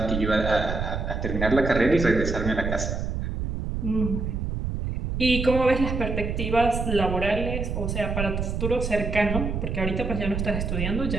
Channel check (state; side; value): noise; right; rumble, 3 dB below the sound